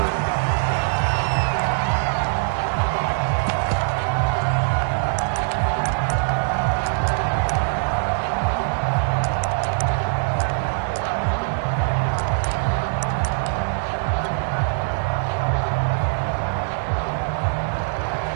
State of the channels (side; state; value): left; silent; digital silence